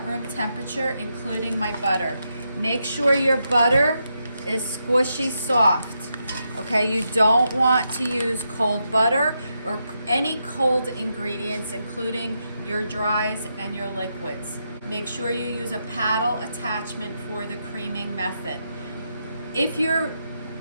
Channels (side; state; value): both; inverted; correlation -0.83